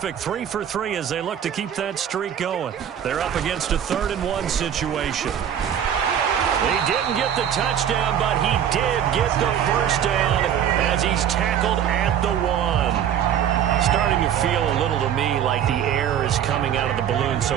3 for 3 as they look to keep that streak going. They're up against a 3rd and 1 situation. He didn't get the touchdown, but he did get the first down as he's tackled at the 1. Starting to feel a little to me like the air is coming out of the balloon,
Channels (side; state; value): left; quieter; 9.4 dB